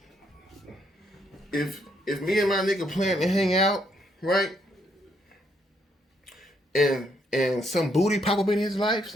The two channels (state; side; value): normal; both; correlation 0.73